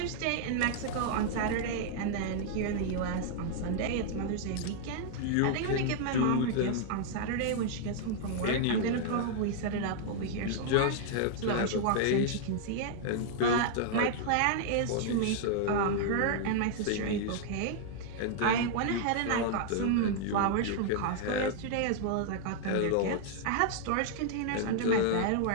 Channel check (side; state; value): both; different; correlation -0.01